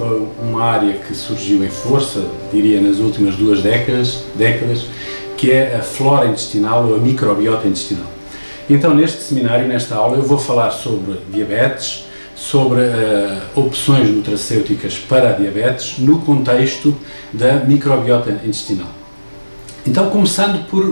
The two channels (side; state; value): both; inverted; correlation -1.00